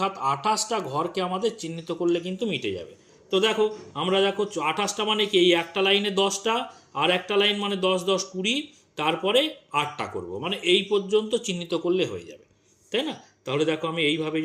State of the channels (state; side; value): identical; both; correlation 1.00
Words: 28টা ঘরকে আমাদের চিহ্নিত করলে কিন্তু মিটে যাবে। তো দেখো আমরা দেখো 28টা মানে কি? এই একটা লাইনে 10টা, আর একটা লাইন মানে 10 10 20, তারপরে 8টা করব, মানে এই পর্যন্ত চিহ্নিত করলে হয়ে যাবে, তাই না? তাহলে দেখো আমি এইভাবে